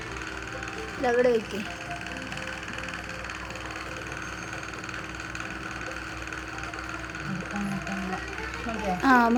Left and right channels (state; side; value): identical; both; correlation 1.00